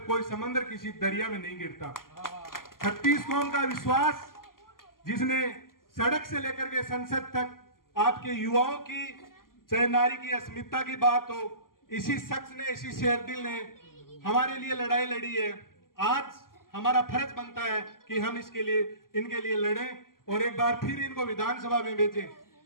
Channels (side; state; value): right; late; 0.91 ms